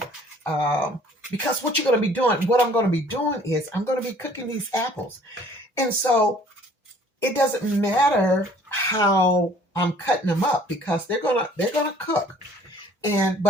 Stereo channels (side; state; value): both; normal; correlation 0.55